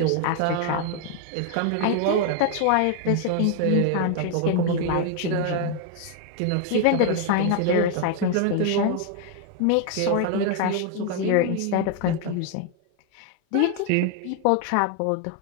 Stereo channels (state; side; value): different; both; correlation 0.01